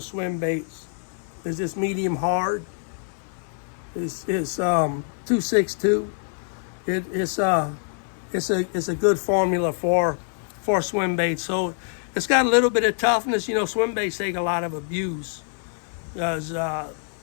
swim baits, is this medium hard. It's 262. It's a good formula for swim baits. So it's got a little bit of toughness. You know, swim baits take a lot of abuse. Because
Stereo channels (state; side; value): silent; right; 62 dB below the other